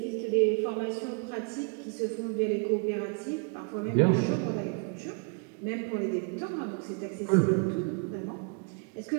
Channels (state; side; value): quieter; left; 36.7 dB